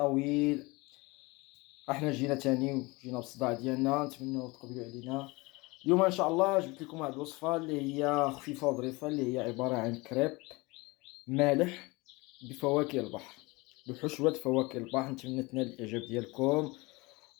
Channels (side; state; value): right; quieter; 24.1 dB